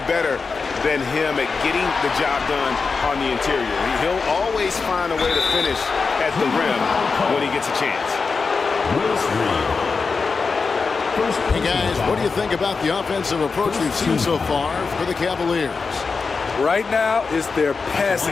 better than him at getting the job done on the interior. He'll always find a way to finish at the rim when he gets a chance. Hey guys, what do you think about the offensive approach we've seen so far for the Cavaliers? Right now, it's their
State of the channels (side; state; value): right; quieter; 4.7 dB